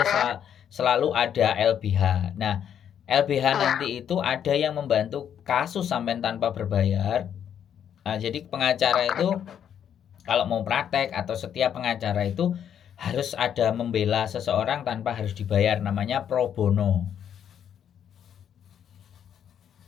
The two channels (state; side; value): quieter; right; 9.0 dB